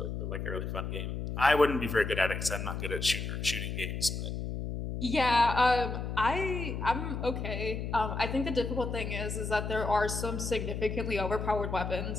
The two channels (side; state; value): left; noise; hum, 4 dB below the sound